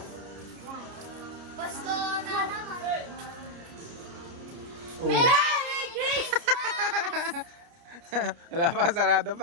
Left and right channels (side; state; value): left; late; 30 ms